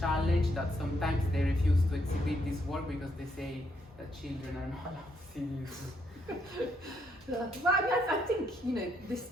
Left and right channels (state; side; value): normal; both; correlation 0.74